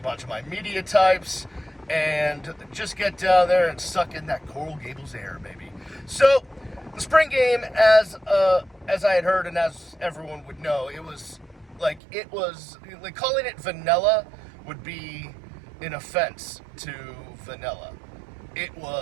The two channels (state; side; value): drops out; left; at 12.0 s